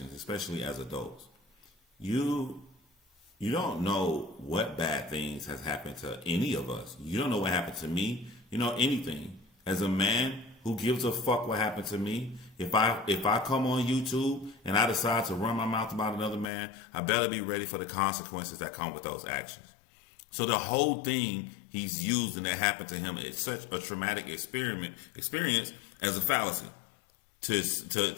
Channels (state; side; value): drops out; right; at 16.5 s